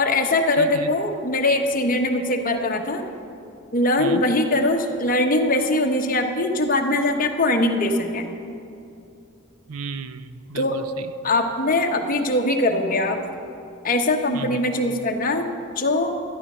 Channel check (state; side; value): normal; both; correlation 0.08